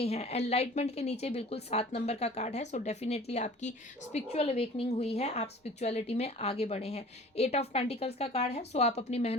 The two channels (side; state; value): both; normal; correlation 0.45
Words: हैं। एनलाइटमेंट के नीचे बिल्कुल 7 नंबर का कार्ड है। सो डेफिनेटली आपकी स्पिरिचुअल अवेकनिंग हुई है, आप स्पिरिचुअलिटी में आगे बढ़े हैं। 8 ऑफ पेंटिकल्स का कार्ड है। सो आप अपनी